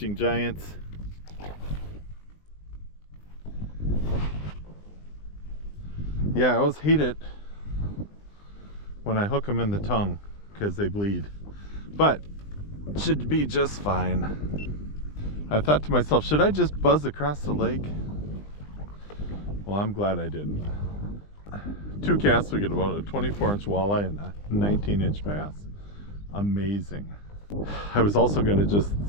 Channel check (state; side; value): late; right; 20 ms